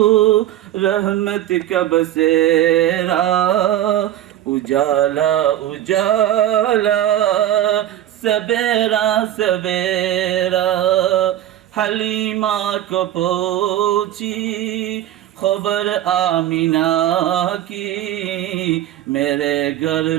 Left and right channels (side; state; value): left; quieter; 12.5 dB